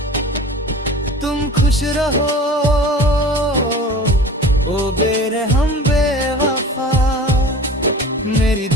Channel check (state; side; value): normal; both; correlation 0.40